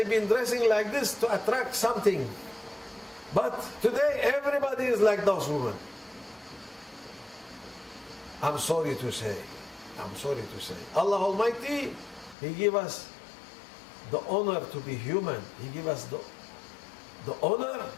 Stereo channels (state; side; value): drops out; right; at 12.4 s